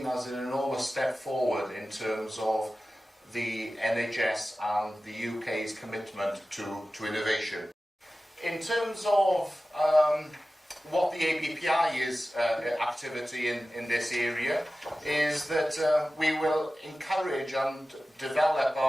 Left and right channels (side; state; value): both; normal; correlation 0.95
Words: as an enormous step forward in terms of the NHS and the UK's commitment to innovation. In terms of what the ABPI's activity in this area is that we will encourage and develop